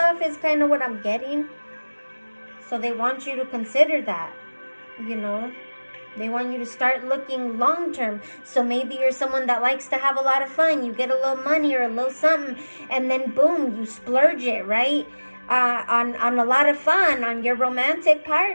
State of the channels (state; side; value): inverted; both; correlation -1.00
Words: is kind of what I'm getting. So they want you to consider that, They want you to start looking long term. So maybe you're someone that likes to have a lot of fun. You get a little money or a little something, and then boom, you splurge it, right? On a lot of fun, on your romantic